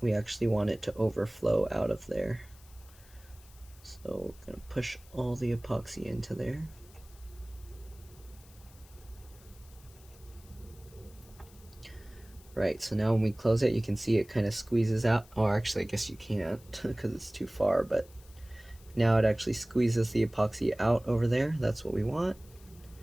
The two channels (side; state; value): left; noise; hiss, 25 dB below the sound